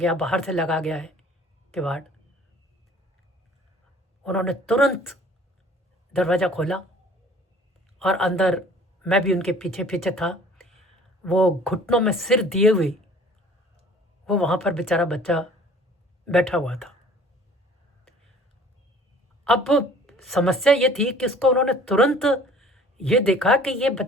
बाहर से लगा गया है किवाड़। उन्होंने तुरंत दरवाज़ा खोला, और अंदर मैं भी उनके पीछे पीछे था। वो घुटनों में सिर दिए हुए वो वहाँ पर बेचारा बच्चा बैठा हुआ था। अब समस्या ये थी कि उसको उन्होंने तुरंत ये देखा कि ये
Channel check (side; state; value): both; normal; correlation 0.51